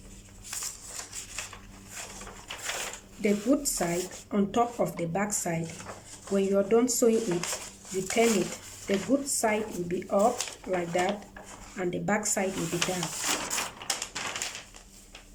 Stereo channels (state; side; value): identical; both; correlation 1.00